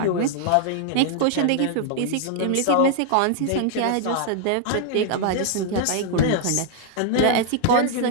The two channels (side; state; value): both; different; correlation -0.01